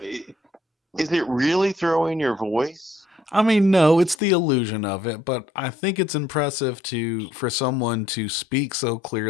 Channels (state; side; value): drops out; right; at 4.2 s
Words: is it really throwing your voice? I mean, no, it's the illusion of it, but I think it's impressive for someone to speak so